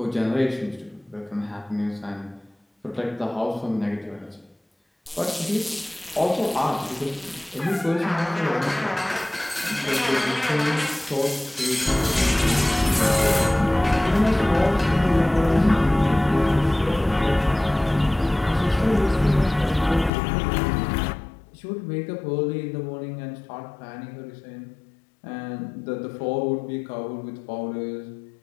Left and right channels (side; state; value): right; drops out; at 20.1 s